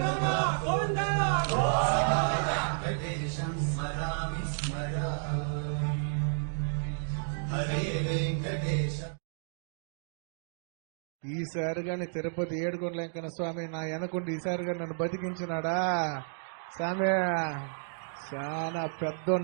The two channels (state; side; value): silent; left; digital silence